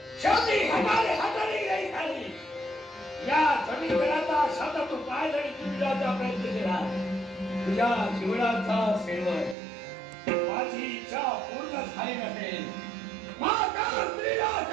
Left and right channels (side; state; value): left; drops out; at 9.6 s